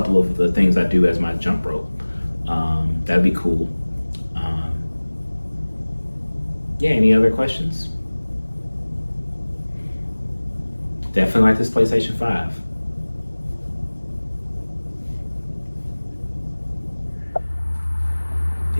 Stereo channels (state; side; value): inverted; both; correlation -1.00